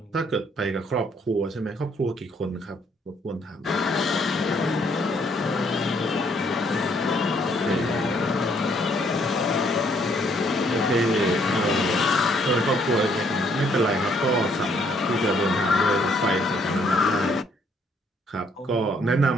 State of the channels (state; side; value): normal; both; correlation 0.67